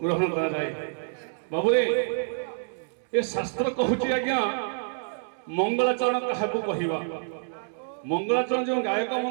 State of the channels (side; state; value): left; silent; digital silence